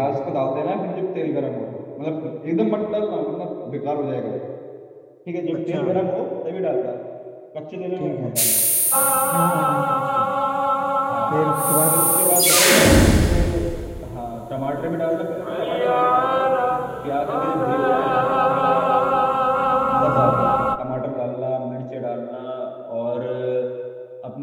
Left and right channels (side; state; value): both; identical; correlation 1.00